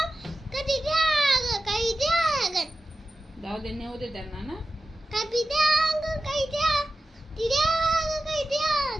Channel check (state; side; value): normal; both; correlation 0.93